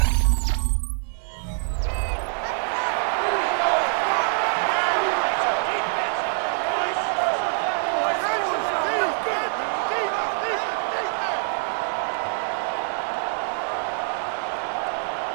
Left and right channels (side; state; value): left; silent; 57 dB below the other